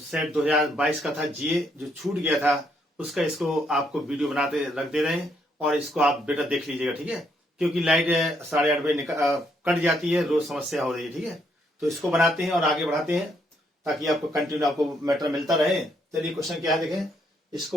2022 का था जीए जो छूट गया था उसका इसको आपको वीडियो बनाते रख दे रहे हैं और इसको आप बेटा देख लीजिएगा, ठीक है। क्योंकि लाइट 8:30 बजे कट जाती है, रोज समस्या हो रही है, ठीक है। तो इसको बनाते हैं और आगे बढ़ाते हैं ताकि आपको कंटिन्यू आपको मैटर मिलता रहे। चलिए क्वेश्चन क्या है देखें,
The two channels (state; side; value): normal; both; correlation 0.73